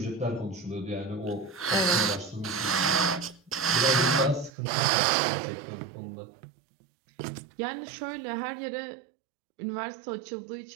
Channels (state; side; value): drops out; left; at 4.5 s